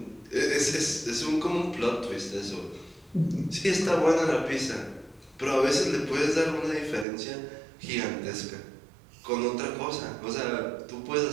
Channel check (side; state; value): left; drops out; at 7.1 s